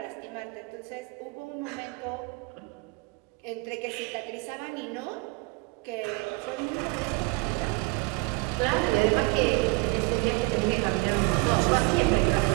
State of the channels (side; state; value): left; quieter; 26.7 dB